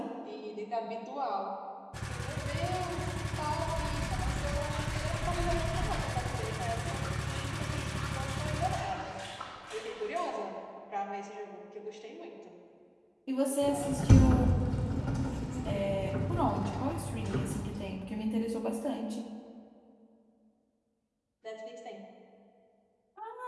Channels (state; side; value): identical; both; correlation 1.00